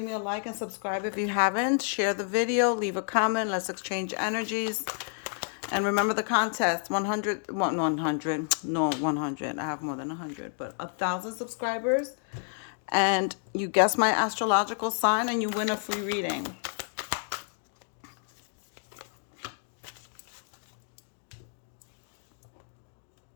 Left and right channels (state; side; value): silent; right; 58 dB below the other